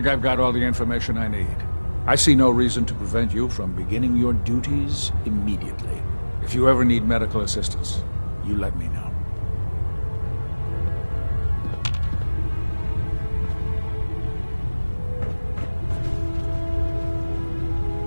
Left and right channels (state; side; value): inverted; both; correlation -1.00